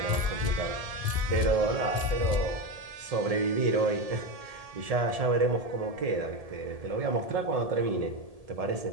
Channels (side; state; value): left; late; 1.7 ms